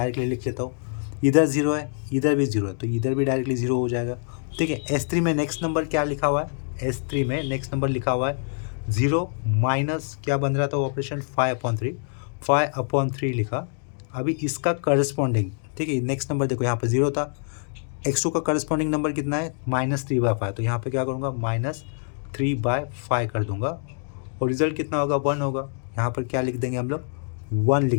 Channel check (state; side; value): silent; right; 57 dB below the other